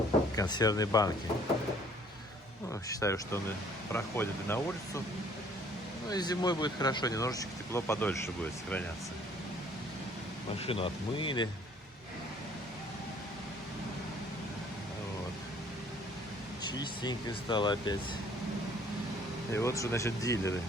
консервные банки. Ну, считаю, что он проходит и на улицу. Ну и зимой будет хорошо, немножечко тепло подольше будет сохраняться. Машину отмыли. Вот. Чистенько стало опять. И вот что, значит, дилеры.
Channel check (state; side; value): normal; both; correlation 0.58